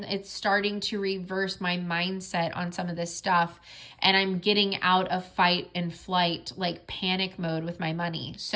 it's starting to reverse my mindset on some of this stuff. And I'm getting out of fight and flight, like panic mode with my money.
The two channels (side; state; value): both; identical; correlation 1.00